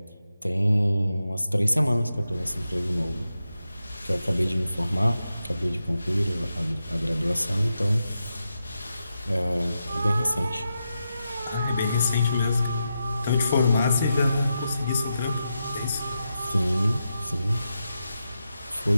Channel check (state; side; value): inverted; both; correlation -0.87